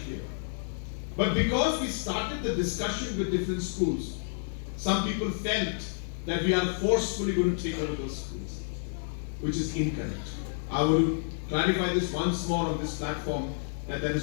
But because we started the discussion with different schools, some people felt that we are forcefully going to take over those schools, which is incorrect. I will clarify this once more on this platform that that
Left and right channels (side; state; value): right; silent; digital silence